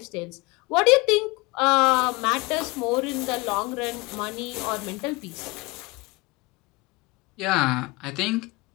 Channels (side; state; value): right; quieter; 24.6 dB